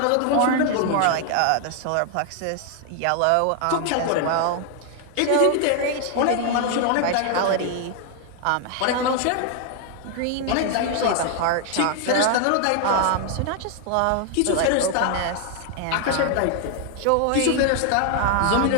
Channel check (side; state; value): both; different; correlation 0.00